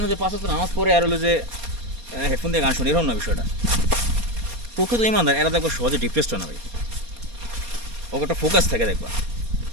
যে 5 ওয়াক্ত নামাজ পড়ে আর হলো যে হেডফোন দিয়ে গান শুনি, এরকম না বিষয়টা। প্রকৃত ইমানদার এরা দেখবা সহজে ডিপ্রেসড হয় না ভাই, ওকে একটা ফোকাস থাকে। দেখবা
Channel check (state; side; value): late; left; 4.3 ms